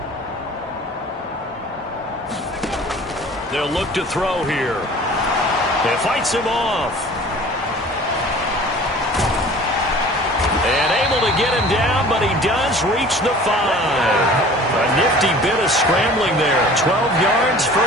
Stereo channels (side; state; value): both; normal; correlation 0.45